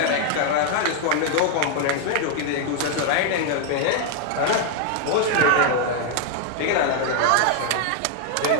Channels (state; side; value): different; both; correlation 0.00